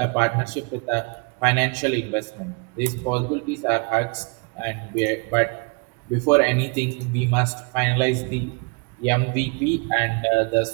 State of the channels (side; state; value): left; quieter; 32.8 dB